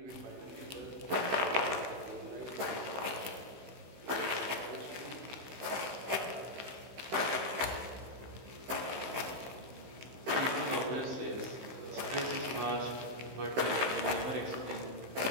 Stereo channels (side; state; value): left; late; 16 ms